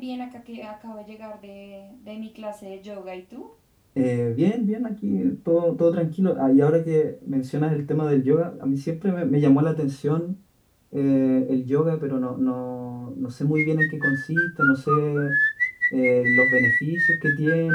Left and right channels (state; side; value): identical; both; correlation 1.00